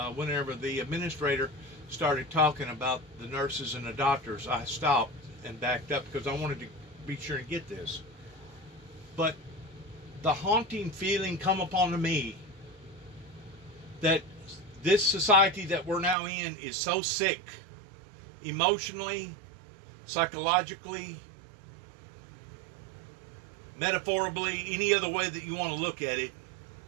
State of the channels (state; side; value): drops out; left; at 16.2 s